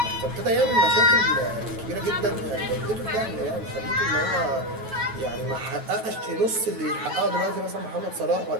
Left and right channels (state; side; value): late; left; 9.2 ms